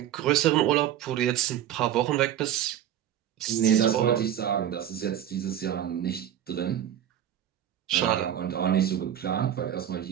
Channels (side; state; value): left; quieter; 10.7 dB